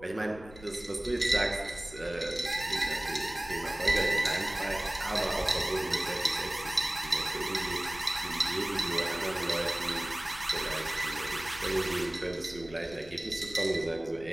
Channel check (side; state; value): left; noise; rumble, 19 dB below the sound